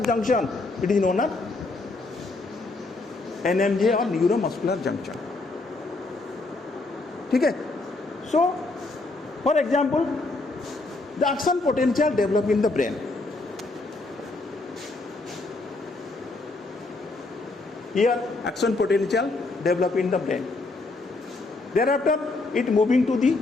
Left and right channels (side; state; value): right; quieter; 3.3 dB